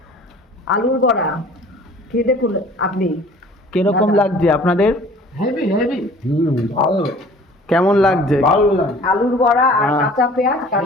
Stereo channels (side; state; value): both; normal; correlation 0.49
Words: আলুর বড়া খেয়ে দেখুন আপনি। কিরকম দাদা। লাগছে আপনাদের? Heavy heavy. ভালো, কেমন লাগছে? ভালো লাগে। আলুর বড়া আর হ্যাঁ। কাঁচা পেঁয়াজ,